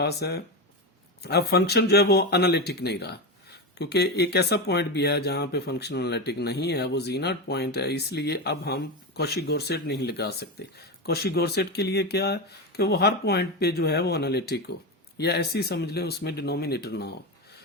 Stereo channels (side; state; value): both; normal; correlation 0.16